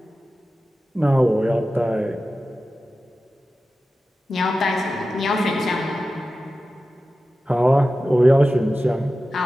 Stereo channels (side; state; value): both; normal; correlation 0.94